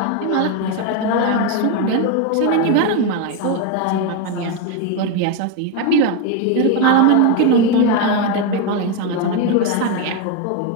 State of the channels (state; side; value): different; both; correlation 0.02